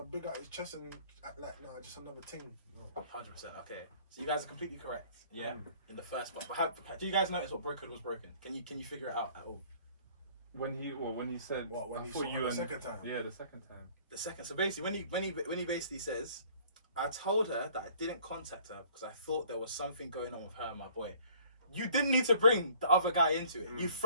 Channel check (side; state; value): both; inverted; correlation -0.55